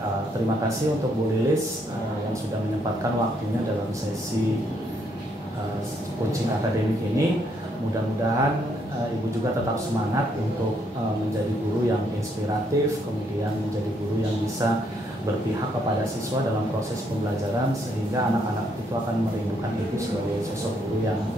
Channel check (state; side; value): normal; both; correlation 0.72